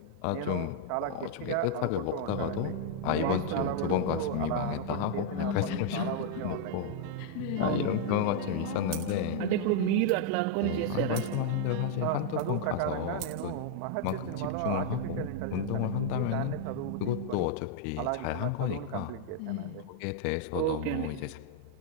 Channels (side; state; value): both; different; correlation -0.01